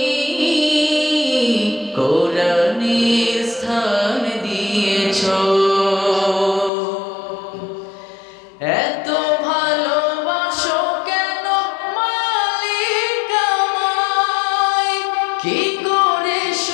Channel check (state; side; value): drops out; right; at 6.7 s